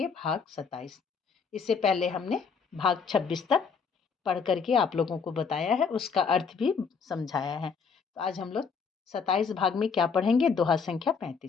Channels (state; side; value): quieter; right; 5.7 dB